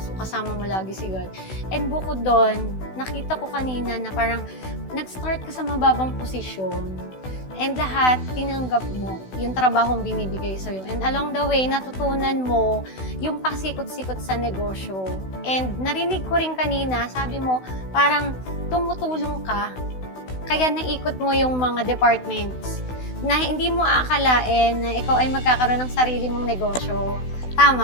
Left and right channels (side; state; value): right; late; 16 ms